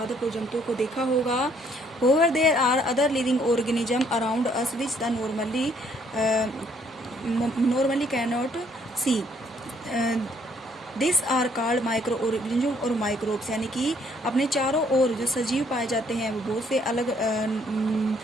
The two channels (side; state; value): both; normal; correlation 0.65